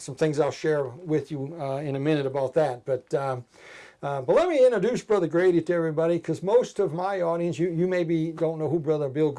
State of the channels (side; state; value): both; identical; correlation 1.00